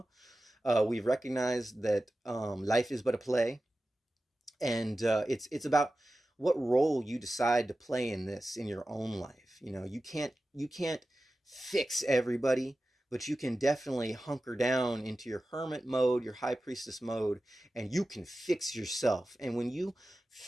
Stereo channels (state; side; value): normal; both; correlation 0.94